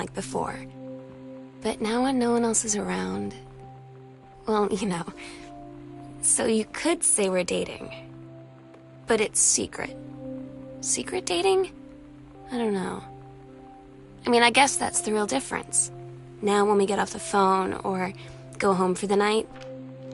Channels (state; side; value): identical; both; correlation 1.00